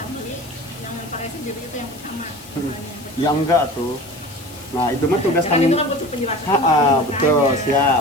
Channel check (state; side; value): noise; left; hiss, 20 dB below the sound